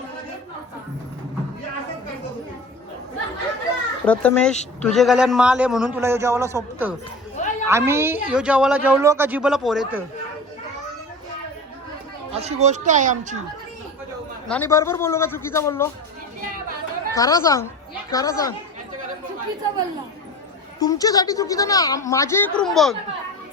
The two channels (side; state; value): both; normal; correlation 0.34